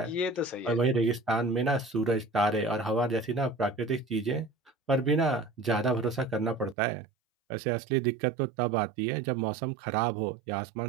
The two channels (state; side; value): drops out; left; at 6.8 s